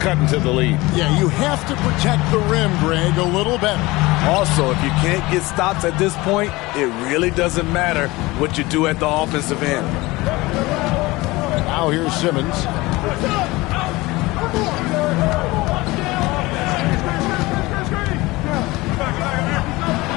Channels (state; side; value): quieter; right; 21.2 dB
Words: into the lead. Yeah, you have to protect the rim, Greg, a little better. Also, if you can't get stops at this point, it really doesn't matter what you do at the offensive end. Now here's Simmons.